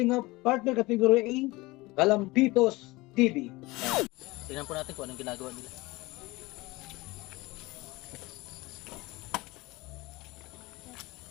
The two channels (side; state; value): right; quieter; 21.6 dB